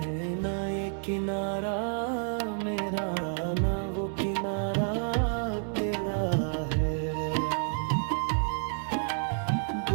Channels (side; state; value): left; silent; 58 dB below the other